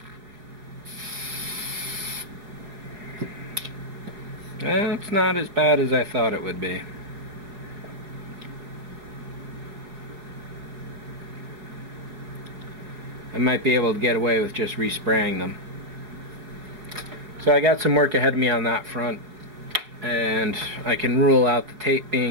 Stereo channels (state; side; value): late; left; 5.0 ms